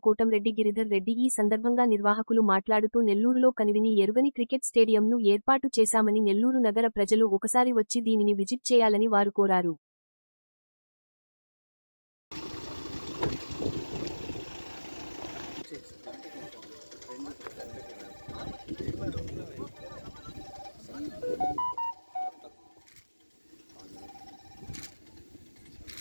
కోటంరెడ్డి గిరిధర్ రెడ్డి. ఈ సందర్భంగా నిర్వాహకులు మాట్లాడుతూ నెల్లూరులో కనివిని ఎరుగని క్రికెట్ స్టేడియంను ఏర్పాటు చేశామని, నెల్లూరు నగర ప్రజలు ఒకసారి వచ్చి దీనిని విజిట్ చేయాలని వారు కోరారు.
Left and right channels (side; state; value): both; inverted; correlation -1.00